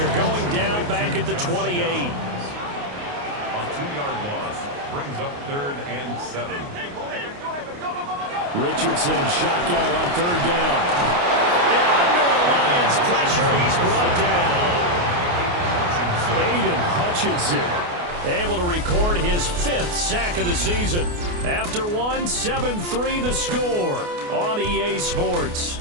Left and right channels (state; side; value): late; left; 28 ms